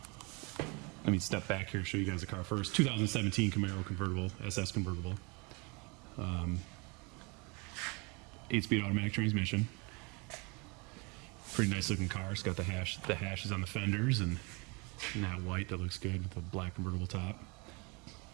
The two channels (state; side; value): quieter; left; 29.4 dB